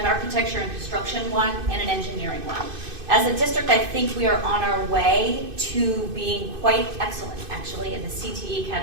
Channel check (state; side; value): late; left; 2.5 ms